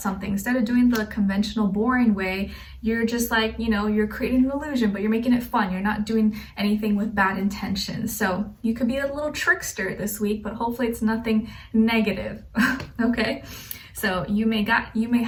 something. Instead of doing the conventional, boring way, you're just like, you know, you're creating an illusion, but you're making it fun. You're not doing anything with bad intentions. So you could be a little trickster this week, but hopefully it's nothing negative, okay? So you may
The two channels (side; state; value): both; identical; correlation 1.00